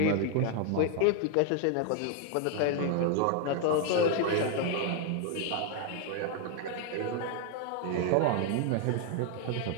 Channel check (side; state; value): both; different; correlation 0.00